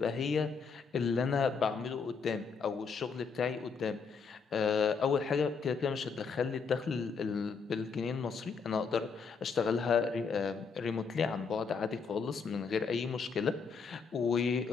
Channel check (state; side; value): quieter; right; 5.4 dB